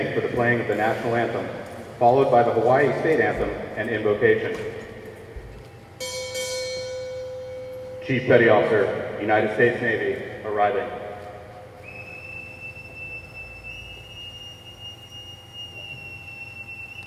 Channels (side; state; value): both; identical; correlation 1.00